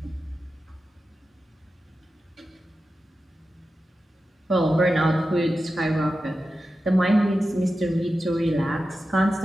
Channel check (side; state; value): both; normal; correlation 0.92